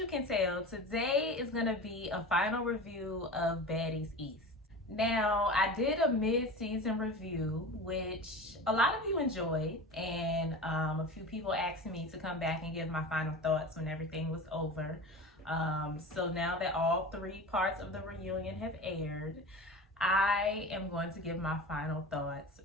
can tell, today is going to be a final review of Baddies East. Now, I did a mid-season review, which a lot of you enjoyed, and a few people asked me to come back and give my final thoughts when everything was over. So now that all three parts of the reunion have aired, I am going to give my final thoughts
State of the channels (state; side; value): normal; both; correlation 0.32